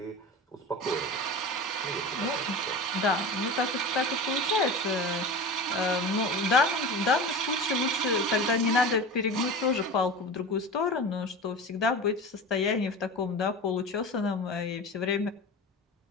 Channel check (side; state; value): both; normal; correlation 0.31